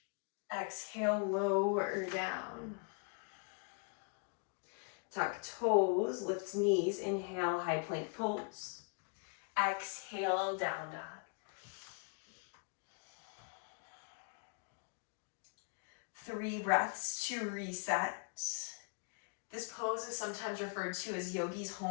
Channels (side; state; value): right; quieter; 37.9 dB